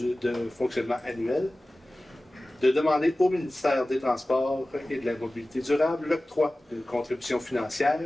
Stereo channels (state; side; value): normal; both; correlation 0.97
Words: fonctionnement annuel, de demander au ministère des Transports et de la Mobilité durable l'octroi d'une contribution